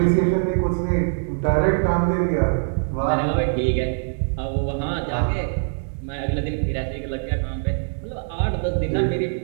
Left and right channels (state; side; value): silent; left; digital silence